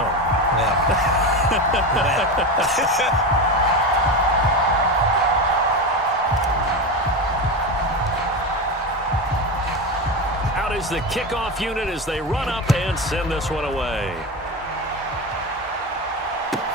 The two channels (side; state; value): both; normal; correlation 0.19